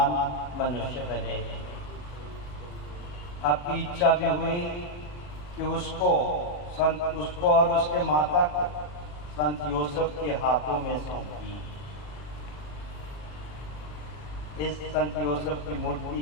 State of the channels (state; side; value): late; right; 40 ms